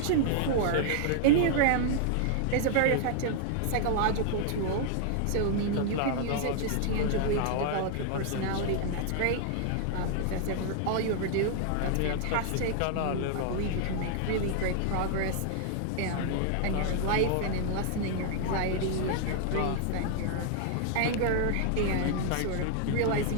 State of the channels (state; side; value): different; both; correlation -0.01